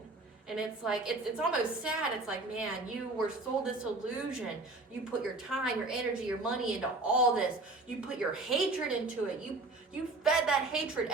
And it's like, it's almost sad. It's like, man, you were sold this illusion. You put your time, your energy, your money into all this. You put your hatred into it. You fed that hatred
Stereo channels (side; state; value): left; quieter; 3.1 dB